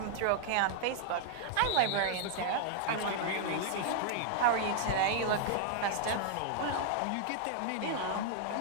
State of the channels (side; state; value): both; different; correlation -0.01